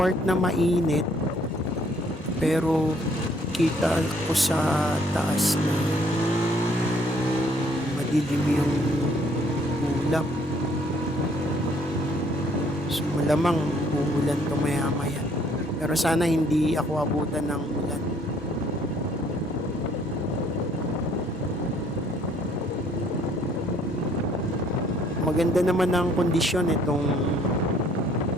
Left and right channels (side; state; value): both; normal; correlation 0.63